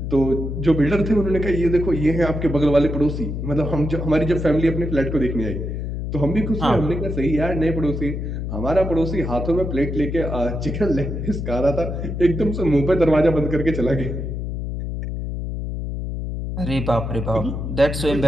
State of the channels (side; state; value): left; noise; hum, 4 dB below the sound